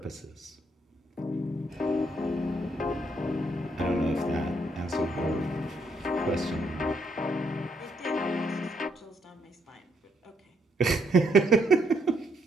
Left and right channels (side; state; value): both; normal; correlation 0.73